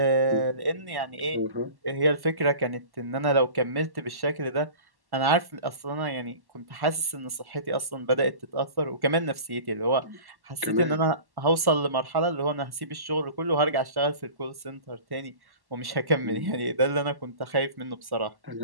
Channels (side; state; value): left; late; 1.1 ms